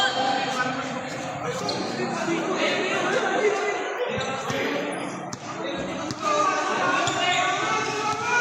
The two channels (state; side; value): identical; both; correlation 1.00